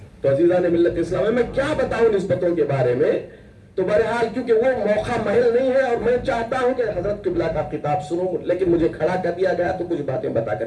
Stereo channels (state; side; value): identical; both; correlation 1.00